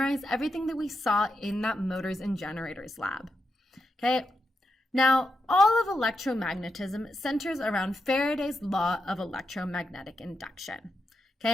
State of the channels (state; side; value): normal; both; correlation 0.85